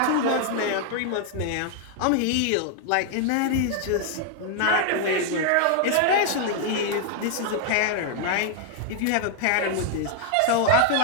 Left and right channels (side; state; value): both; different; correlation 0.00